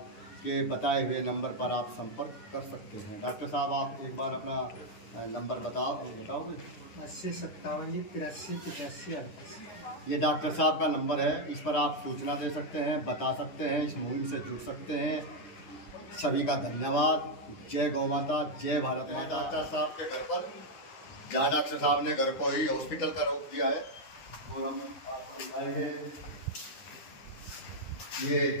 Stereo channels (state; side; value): late; right; 9.9 ms